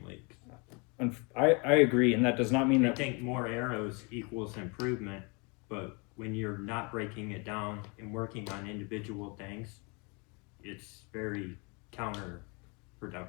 leagues. And I agree, and that does not mean I that... think more arrows equals improvement, but when you're not breaking it down and working on individual things, it's very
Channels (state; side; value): quieter; right; 31.3 dB